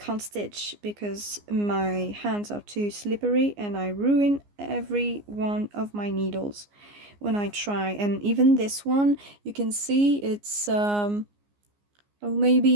stitch because my hands are too slippery, and I ruin every one of my needles when I try. And even this one, you can see it's maybe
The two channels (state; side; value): late; left; 14 ms